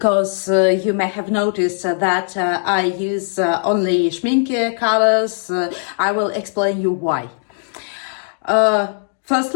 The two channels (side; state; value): right; silent; digital silence